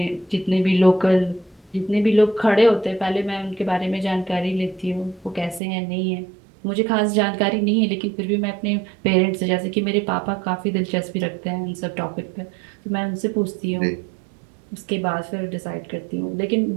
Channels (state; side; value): drops out; left; at 5.6 s